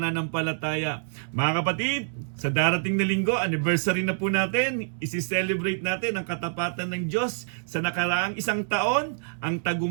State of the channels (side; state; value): left; silent; digital silence